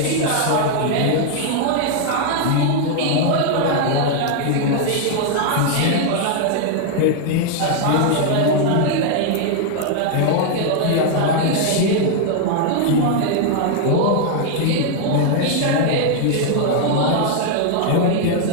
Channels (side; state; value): both; different; correlation 0.00